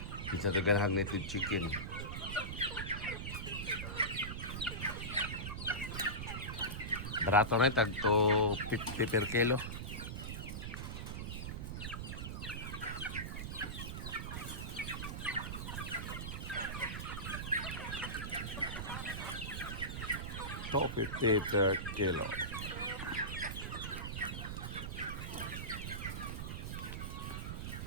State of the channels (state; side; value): noise; right; rumble, 5 dB below the sound